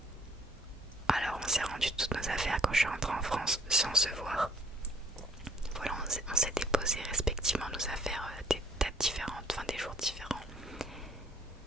Alors on s'est rendu toutes nos affaires quand je suis rentrée en France sans se voir. Voilà, on s'est déposé respectivement nos affaires des dates différentes, enfin des jours différents.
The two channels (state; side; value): normal; both; correlation 0.62